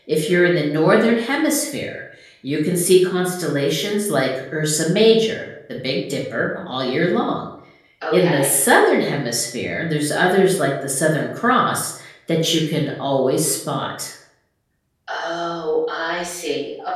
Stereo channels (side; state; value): both; identical; correlation 1.00